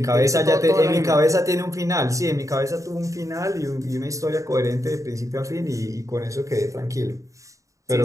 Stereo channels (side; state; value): left; late; 0.16 ms